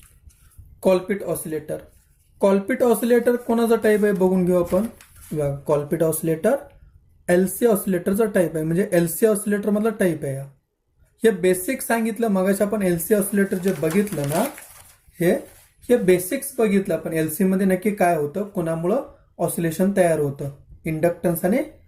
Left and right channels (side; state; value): both; identical; correlation 1.00